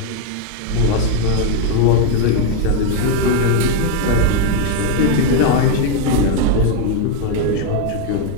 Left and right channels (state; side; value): different; both; correlation 0.01